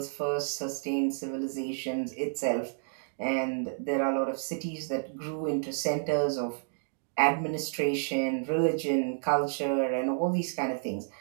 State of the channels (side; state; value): left; silent; digital silence